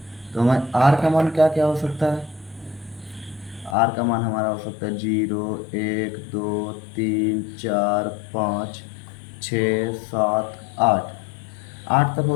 तो हमें r का मान क्या क्या हो सकता है, r का मान हमारा हो सकता है 0 1 2 3 4 5 6 7 8 तक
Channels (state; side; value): drops out; right; at 3.8 s